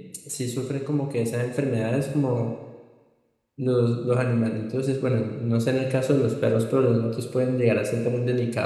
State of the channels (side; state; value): both; identical; correlation 1.00